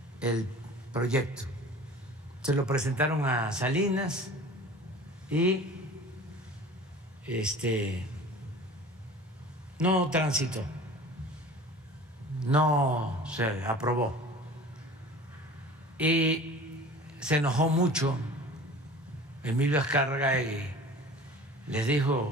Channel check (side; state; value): both; normal; correlation 0.41